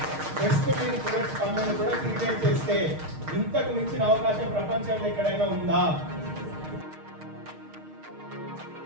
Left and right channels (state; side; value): late; left; 6.5 ms